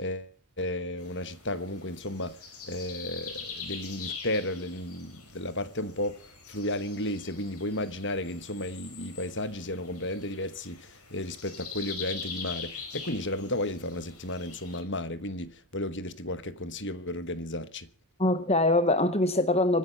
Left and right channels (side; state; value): both; normal; correlation 0.11